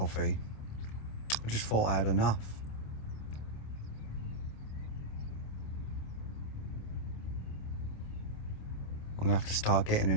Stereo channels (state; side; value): late; right; 27 ms